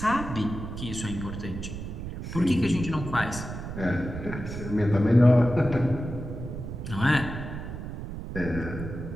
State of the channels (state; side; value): noise; right; rumble, 8 dB below the sound